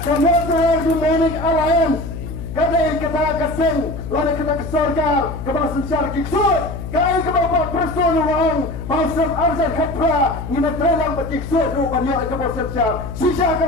Kemudian Demonic Alliance kadai kita kesing lalu kita kesorkar kepala sensyar kiksur kai kebapa person uang mausam arzan khapra ngina trelang bekiksur du banyak kepala sensyar sisa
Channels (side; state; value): left; noise; hum, 8 dB below the sound